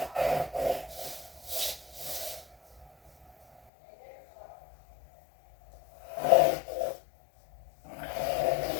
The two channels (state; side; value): drops out; right; at 3.6 s